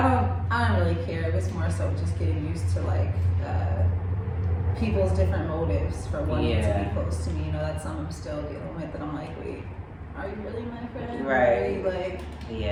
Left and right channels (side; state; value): both; identical; correlation 1.00